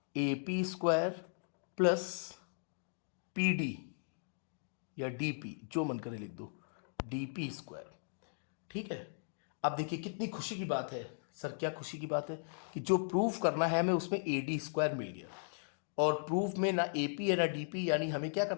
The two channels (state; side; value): silent; right; digital silence